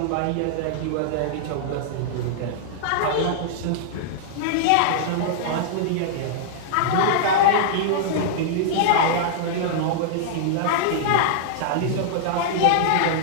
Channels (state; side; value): different; both; correlation -0.01